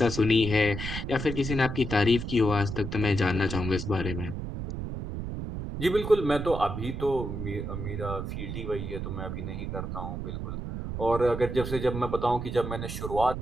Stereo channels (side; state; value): right; noise; rumble, 5 dB below the sound